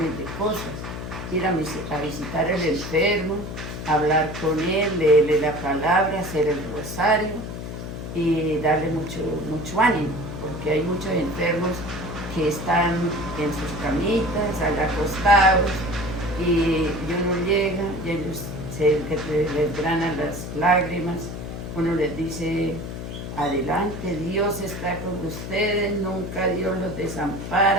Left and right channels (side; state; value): left; noise; hum, 7 dB below the sound